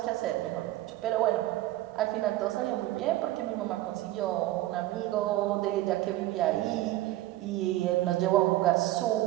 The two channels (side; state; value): left; quieter; 16.1 dB